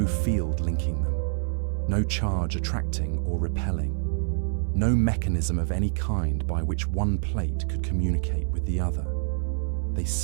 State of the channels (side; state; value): left; silent; 61 dB below the other